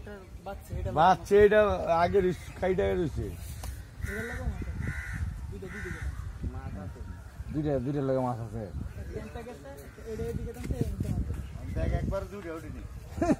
বাচ্চা এটা আগে খাইটা রয়েছে দুইটা লাগে মাছ আছে একবার দুইটা উঠিনি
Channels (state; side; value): identical; both; correlation 1.00